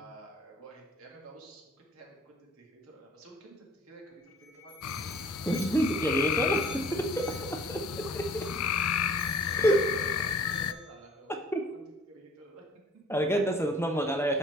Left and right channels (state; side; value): normal; both; correlation 0.52